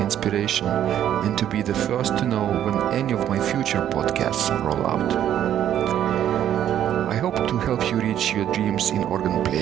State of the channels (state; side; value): quieter; left; 10.7 dB